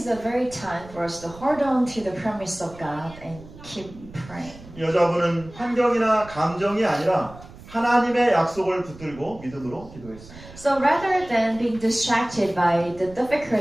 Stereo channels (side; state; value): right; noise; rumble, 18 dB below the sound